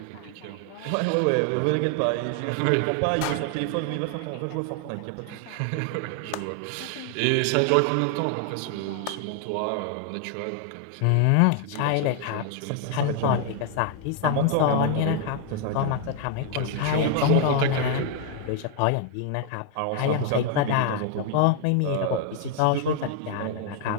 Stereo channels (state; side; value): different; both; correlation 0.00